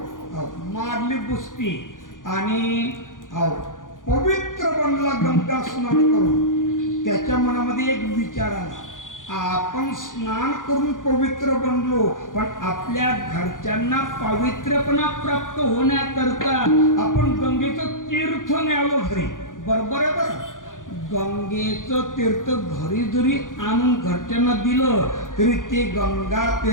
मारली बुसती आणि पवित्र बनला गंगा स्नान करून. त्याच्या मनामध्ये एक विचार आला, आपण स्नान करून पवित्र बनलो, पण आपल्या घरच्यांना पवित्रपणा प्राप्त होण्याकरता आपण गंगेचं तीर्थ न्यावं घरी. बरोबर आहे बरं. गंगेचं तीर्थ घरी जरी आणून घरच्यांना दिलं तरी ते गंगा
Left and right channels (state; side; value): late; right; 0.88 ms